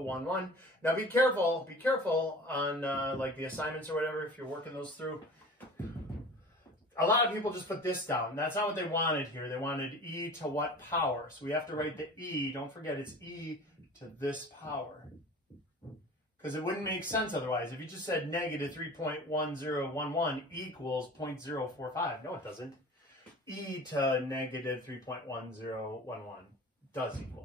Now be careful on like the assignments or whatever, if you're working those through. A lot of people just put this down. That's not what they wanted here. They wanted e to what power? So we have to write the e. Don't forget, it's e to this power. Because it wouldn't make sense otherwise. If you just said negative 3.1011 equals 0.045. No, it doesn't. E to negative 3.1011 does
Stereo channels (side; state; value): both; normal; correlation 0.40